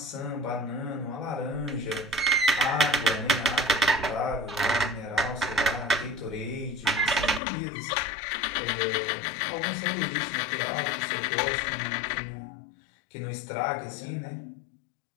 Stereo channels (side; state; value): right; drops out; at 7.4 s